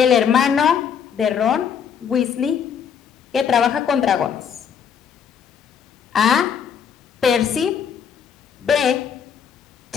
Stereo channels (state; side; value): quieter; right; 7.5 dB